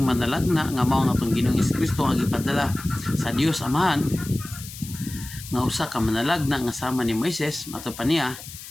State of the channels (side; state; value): left; noise; hiss, 14 dB below the sound